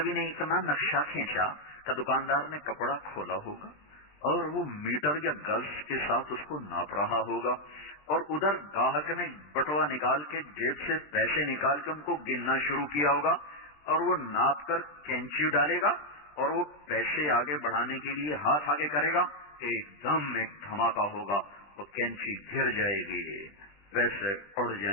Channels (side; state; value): right; late; 20 ms